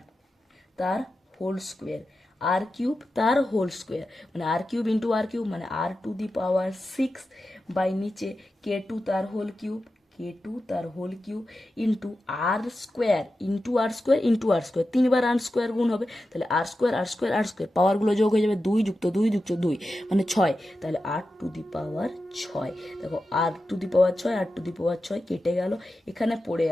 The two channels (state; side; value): normal; both; correlation 0.91